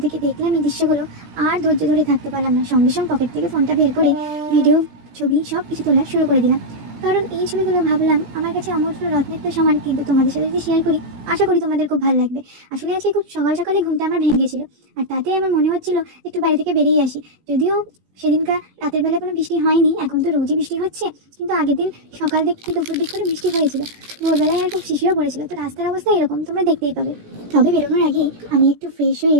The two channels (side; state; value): left; late; 17 ms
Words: থেকে দেখলাম এই দৃশ্যগুলো, আর ধৈর্য ধরে থাকতে পারলাম না। সঙ্গে সঙ্গে পকেট থেকে ফোনটা বের করে ভিডিও, ছবি সব কিছু তোলা শুরু করে দিলাম। কারণ এই ছবিগুলো ভাবলাম আমার কাছে অমূল্য রত্নের তো সমান, কিন্তু তোমাদের সাথে যদি শেয়ার করি আশা করি তোমাদের খুব ভালো লাগবে। আসলে আজকে খুব সকাল সকালে ঘুমটা আমার ভেঙে গেছিল, আর তাতে আমার মনে হচ্ছিল একটু বাড়ি থেকে বেরিয়ে আসি। যদিও সেদিনকার রাতের বেলা কোনো বৃষ্টি হয়নি, এখন তো রোজই বৃষ্টি হচ্ছে, কিন্তু আগের দিন সকাল দিক থেকে দুপুর দিক করে বৃষ্টি হয়েছিল। ভোরবেলায় আর খুব শিশিরও পড়েছিল। তো রাস্তার অবস্থা এরকম তোমরা দেখতেই পাবে। তবে বেরোনোর আগে আমি একটু ফ্রেশ হয়ে